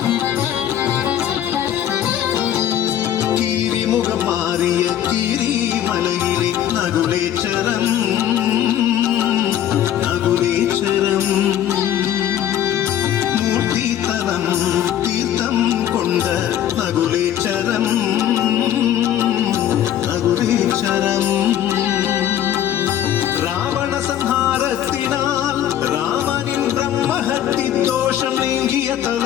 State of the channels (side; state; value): right; quieter; 11.0 dB